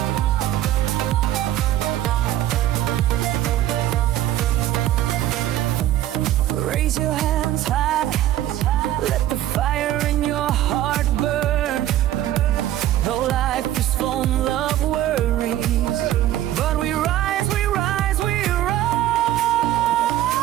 Raise your hands high, let the fire in your heart burn. Though life is full of worries, but we rise, we rise, we rise.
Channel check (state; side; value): quieter; left; 13.1 dB